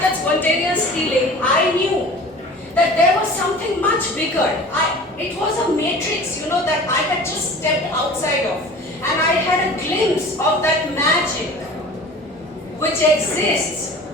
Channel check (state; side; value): normal; both; correlation 0.41